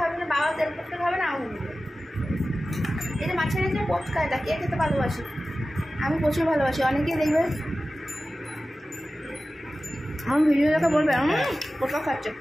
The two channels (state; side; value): normal; both; correlation 0.95